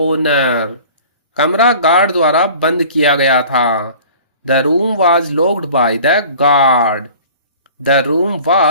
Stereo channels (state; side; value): inverted; both; correlation -0.45